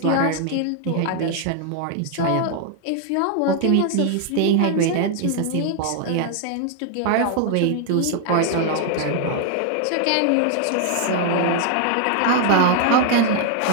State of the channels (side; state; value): both; different; correlation 0.00